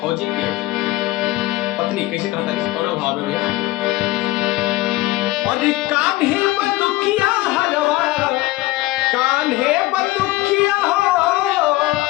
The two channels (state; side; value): quieter; right; 18.1 dB